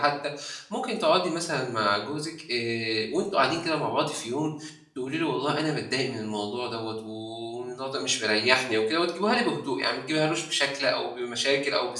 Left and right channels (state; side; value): identical; both; correlation 1.00